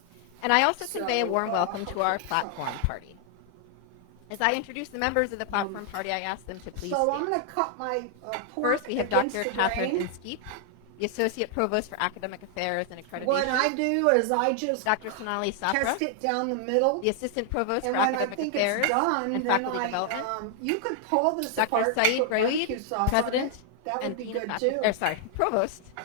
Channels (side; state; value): both; different; correlation 0.00